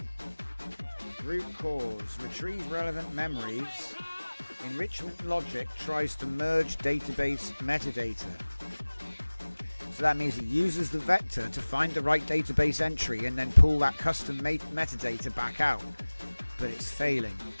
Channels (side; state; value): both; inverted; correlation -1.00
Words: Root cause. Retrieve relevant memories. Enrichment logic tries to merge database metadata. So that means it uses the vector to find the right database entry and then pull that custom metadata back out. But it's failing.